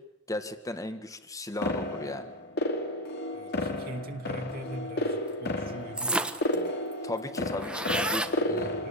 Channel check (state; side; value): normal; both; correlation 0.14